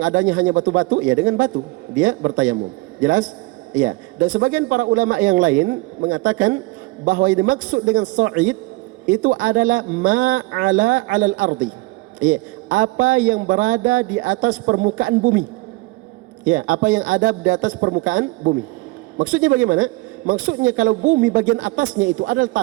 adanya hanya batu-batu, ya, dengan batu dia bertayamum. Jelas? Ya. Dan sebagian para ulama yang lain mengatakan bahwa yang dimaksud dengan sa'id itu adalah ma'ala 'alal ardi. Ya, apa yang berada di atas permukaan bumi. Ya, apa yang ada di atas permukaan bumi. Maksudnya bagaimana? Maksudnya kalau bumi bagian atasnya itu adalah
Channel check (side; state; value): left; quieter; 23.0 dB